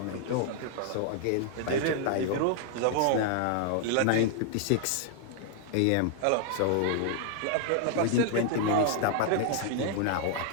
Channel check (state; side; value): different; both; correlation 0.00